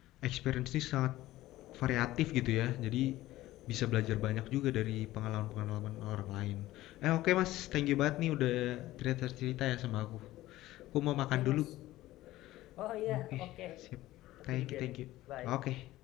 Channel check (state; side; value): quieter; right; 16.2 dB